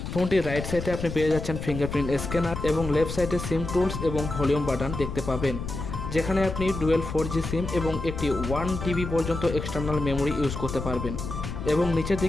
ফোনটির রাইট সাইডে আপনি পেয়ে যাচ্ছেন ফিঙ্গারপ্রিন্ট স্ক্যানার এবং লেফট সাইডে সিম টুলস এবং ভলিউম বাটন দেখতে পাবেন, যেখানে আপনি ডুয়েল 4G সিম এবং একটি 1 TB পর্যন্ত এক্সটার্নাল মেমোরি ইউজ করতে পারবেন। এবং নিচের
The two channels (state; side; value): noise; left; rumble, 6 dB below the sound